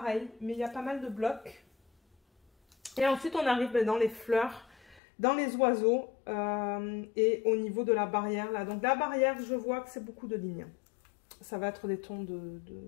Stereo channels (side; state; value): right; drops out; at 5.0 s